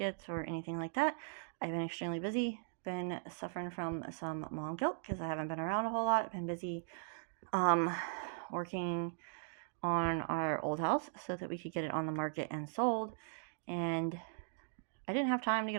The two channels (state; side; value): silent; left; digital silence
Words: or anything like that. I've been extremely busy, been suffering from some mom guilt because I haven't been around a whole lot. I've been busy working on our old house so that we could get it on the market and sold, and I didn't have time to